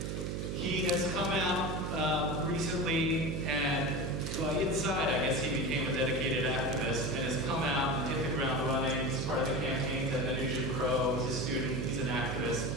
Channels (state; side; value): noise; right; hum, 2 dB below the sound